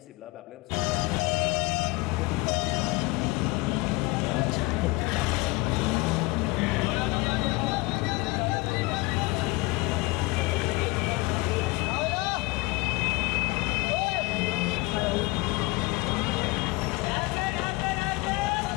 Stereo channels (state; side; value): quieter; right; 23.5 dB